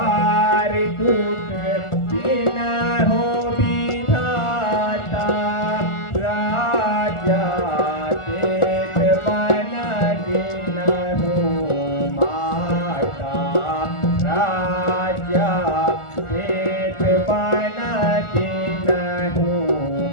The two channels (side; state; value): right; late; 1.4 ms